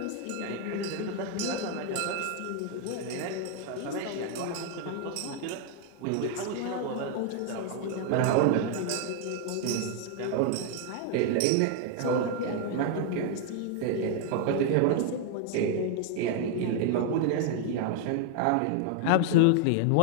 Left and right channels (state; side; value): different; both; correlation 0.00